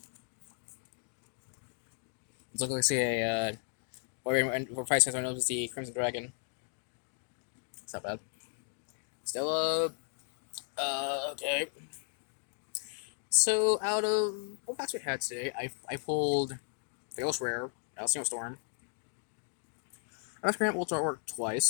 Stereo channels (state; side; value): silent; right; 54 dB below the other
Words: Let's look, see a, for 5 cents, I know it's the Crimson Dragon. It's not bad. Still, okay. So, out of what packs we had today, I pulled the Ghost Rare, Single Storm. I was Grant Ultra Artwork